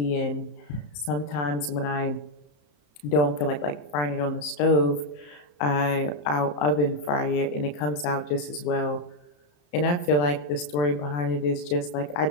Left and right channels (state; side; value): late; right; 34 ms